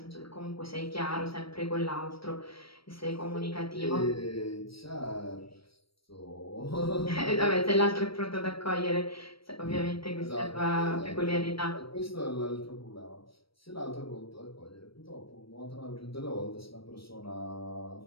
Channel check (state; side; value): late; right; 0.75 ms